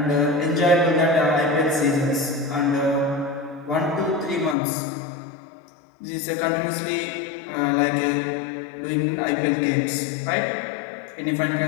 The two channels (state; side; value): drops out; right; at 4.5 s